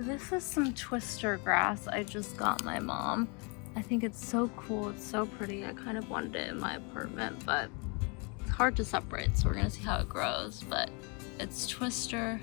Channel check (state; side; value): quieter; right; 32.8 dB